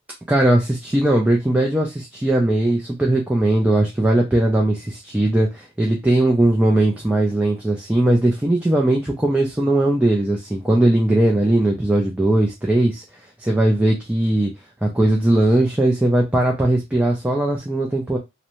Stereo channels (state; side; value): normal; both; correlation 0.90